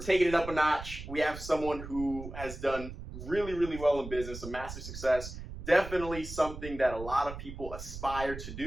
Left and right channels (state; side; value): noise; right; rumble, 10 dB below the sound